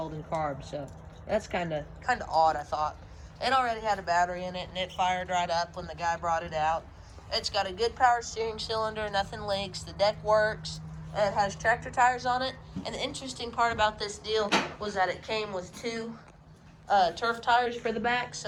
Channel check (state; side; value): identical; both; correlation 1.00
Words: and carb, so that's kind of odd, I thought. It already had a battery in it, and it fired right up when the guy brought it out. It's got a good power steering cylinder, nothing leaks, the deck works, it has tractor tires on it. And the interesting part about this deal was that it came with two turf tires for the back,